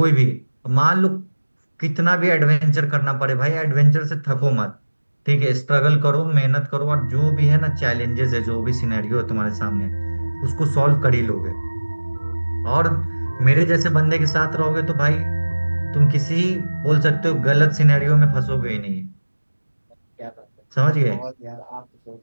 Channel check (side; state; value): both; inverted; correlation -1.00